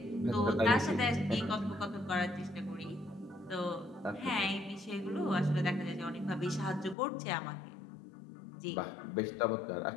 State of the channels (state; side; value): drops out; right; at 7.0 s